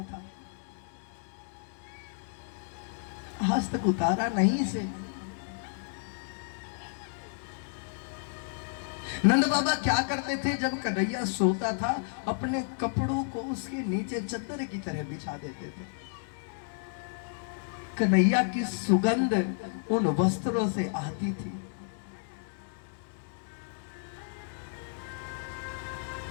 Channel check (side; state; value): right; silent; digital silence